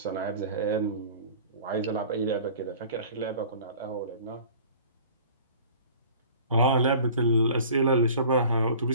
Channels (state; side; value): inverted; both; correlation -0.45